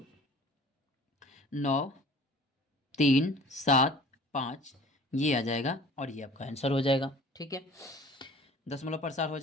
ये आ जाएगा और ये आपका आंसर हो जाएगा। ठीक है, दशमलव प्रसार हो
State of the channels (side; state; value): both; normal; correlation 0.47